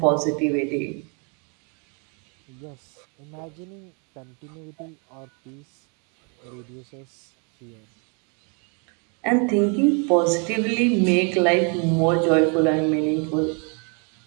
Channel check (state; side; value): quieter; left; 36.5 dB